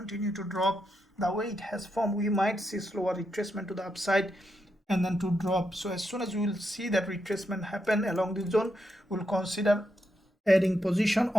to drop. The way it has formed, we might see slower retracement to the upside and then to drop. So as soon as we will see that retracement happen along this zone, we'll consider adding position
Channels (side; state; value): both; normal; correlation 0.83